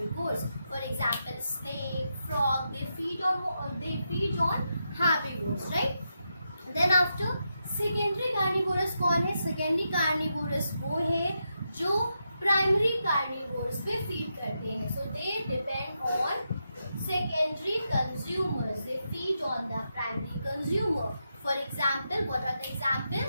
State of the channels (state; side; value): inverted; both; correlation -0.85